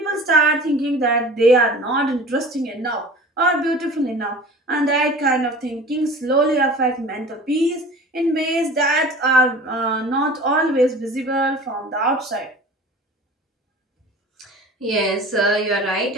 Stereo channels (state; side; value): normal; both; correlation 0.40